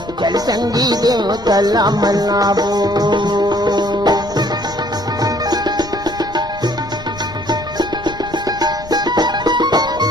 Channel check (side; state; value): left; noise; rumble, 16 dB below the sound